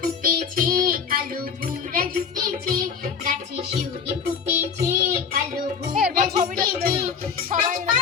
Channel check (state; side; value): quieter; right; 6.4 dB